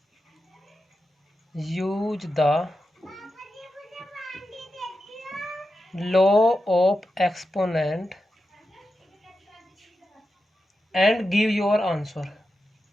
Use the law of exponent and give your answer.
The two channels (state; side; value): normal; both; correlation 0.89